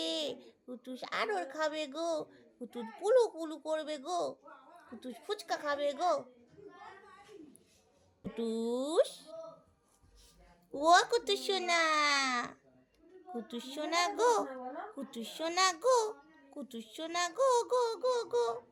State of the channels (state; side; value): identical; both; correlation 1.00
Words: কুটুস আদর খাবে গো। কুটুস পুলু পুলু করবে গো। কুটুস ফুচকা খাবে গো। কুটুস, ও কুটুস সোনা, কুটুস সোনা গো, কুটুস সোনা গো, কুটুস সোনা গো গো গো গো।